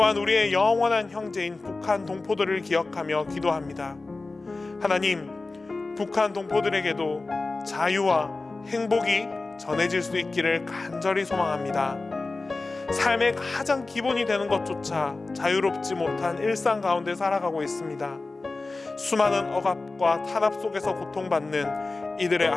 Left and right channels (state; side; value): quieter; right; 3.5 dB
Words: 우리의 영원한 형제인 북한 동포들을 기억하며 기도합니다. 하나님, 북한 동포들에게도 자유와 행복이 전해질 수 있기를 간절히 소망합니다. 삶의 가장 기본이 되는 것조차 자유롭지 못한 일상 가운데 살아가고 있습니다. 수많은 억압과 탄압 속에서 고통받는 이들의